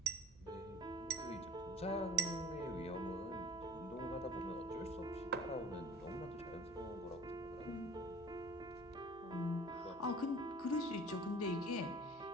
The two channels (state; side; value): noise; right; hum, 23 dB below the sound